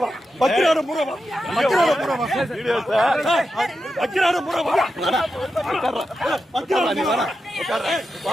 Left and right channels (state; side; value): normal; both; correlation 0.89